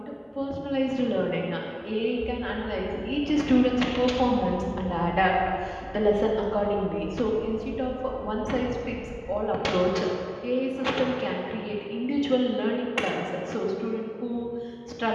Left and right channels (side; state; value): both; identical; correlation 1.00